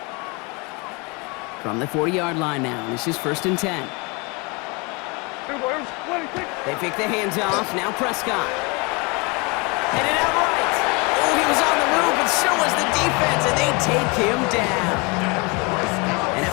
From the 40-yard line now, this is 1st and 10. They pick the hands off. Now Prescott. Headed out right. Oh, he was on the move, but so was the defense, and they take him down. And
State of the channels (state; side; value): quieter; right; 29.2 dB